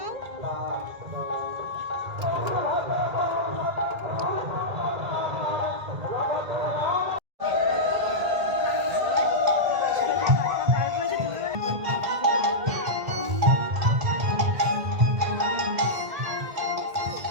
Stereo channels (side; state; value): left; late; 1.8 ms